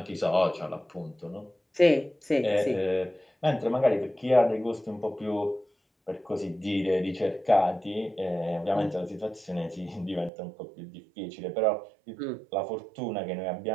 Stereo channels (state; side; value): drops out; left; at 10.3 s